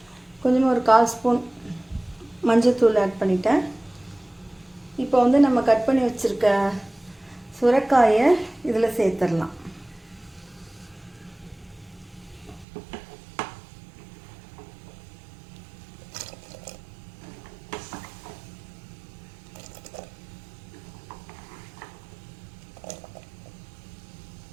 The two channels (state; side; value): drops out; left; at 12.7 s